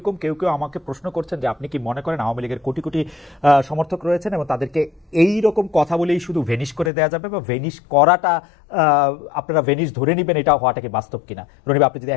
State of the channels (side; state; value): right; drops out; at 6.9 s